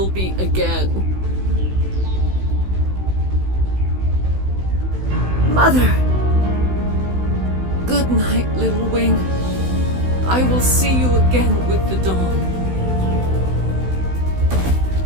be again. Mother! Good night, little wing. I will see you again with the dawn.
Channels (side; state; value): left; late; 16 ms